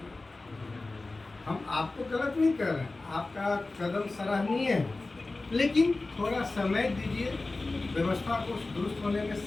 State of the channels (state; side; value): quieter; right; 3.3 dB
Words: हम आपको गलत नहीं कर रहे हैं, आपका कदम सराहनीय है, लेकिन थोड़ा समय दीजिए। व्यवस्था को दुरुस्त होने में